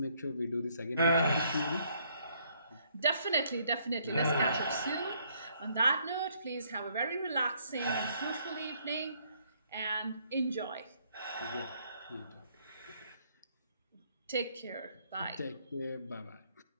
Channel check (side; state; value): both; inverted; correlation -0.68